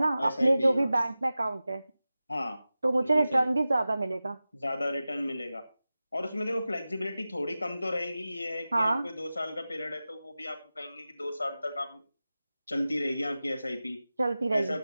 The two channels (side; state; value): both; inverted; correlation -0.95